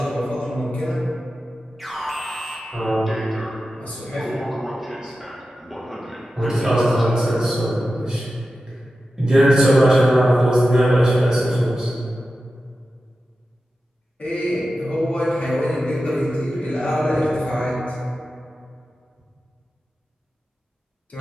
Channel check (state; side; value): normal; both; correlation 0.92